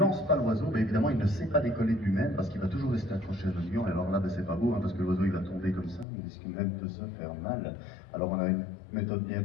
pas l'oiseau, ben, évidemment il ne sait pas décoller de lui-même parce qu'il va toujours rester accroché à notre gant. Et alors là ben, c'est pas beau, hein, parce que l'oiseau il va tomber comme ça, il risque même de se faire mal. Alors on a une méthode bien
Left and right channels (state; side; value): drops out; right; at 6.1 s